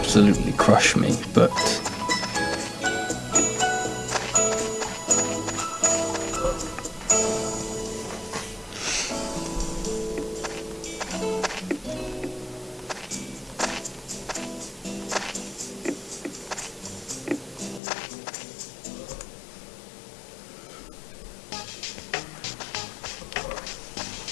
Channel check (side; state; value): right; drops out; at 17.8 s